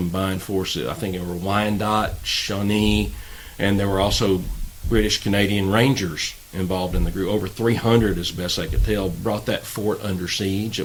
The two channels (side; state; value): both; identical; correlation 1.00